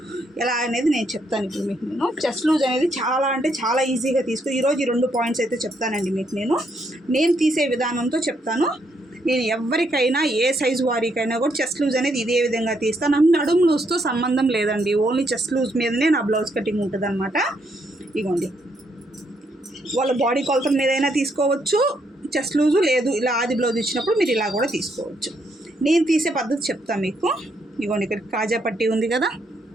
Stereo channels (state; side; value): normal; both; correlation 0.75